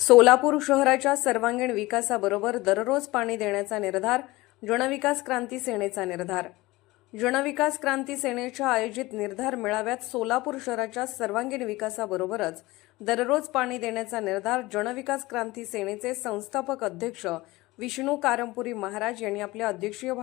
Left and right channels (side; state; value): right; quieter; 20.2 dB